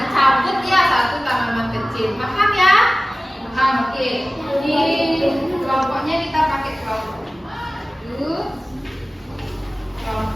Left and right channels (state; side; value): normal; both; correlation 0.97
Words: ya satu tanaman kecil. Makan ya. Makan, oke. Ini kelompoknya kita pakai kelompok.